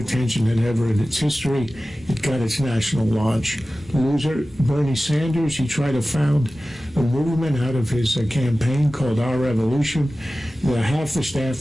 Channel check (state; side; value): normal; both; correlation 0.96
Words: than ever in its history. It got its national launch. Loser, Bernie Sanders, he tried to found a movement out of his campaign called Our Revolution. Half the